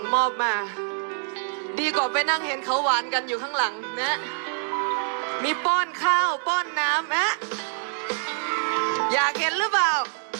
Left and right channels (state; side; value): silent; left; 61 dB below the other